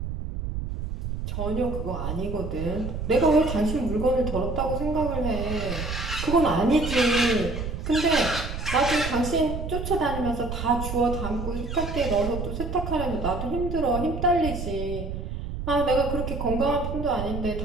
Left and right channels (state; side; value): noise; right; rumble, 5 dB below the sound